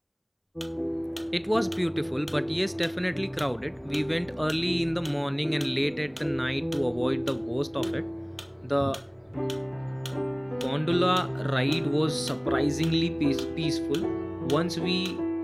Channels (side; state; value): both; identical; correlation 1.00